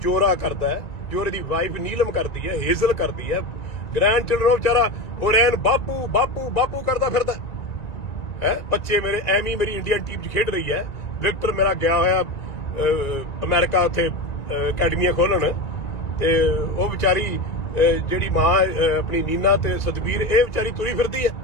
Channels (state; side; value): late; right; 2.1 ms